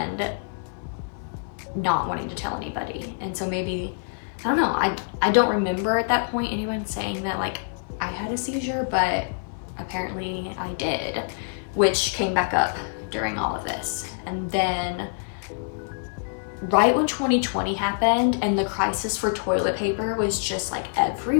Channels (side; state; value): right; silent; digital silence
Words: not wanting to tell anybody. And so maybe, I don't know, I don't remember at that point anyone saying that like I had a seizure, but apparently I did, which came back up during all of this. And then right when 2020 happened and the crisis for toilet paper was just like